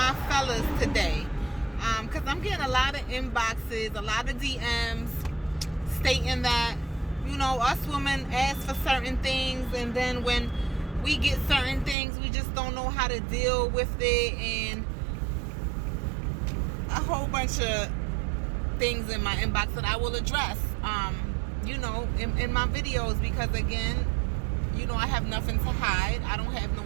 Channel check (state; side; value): drops out; left; at 12.0 s